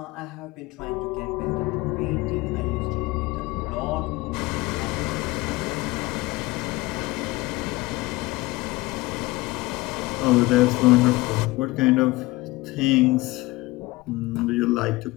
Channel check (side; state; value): right; quieter; 21.0 dB